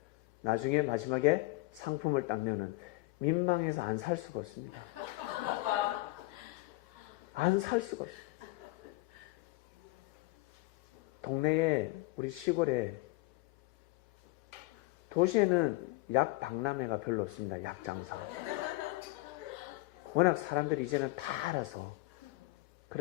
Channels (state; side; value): quieter; right; 21.1 dB